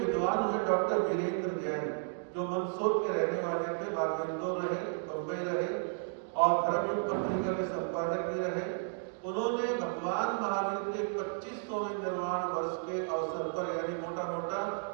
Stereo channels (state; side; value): silent; left; digital silence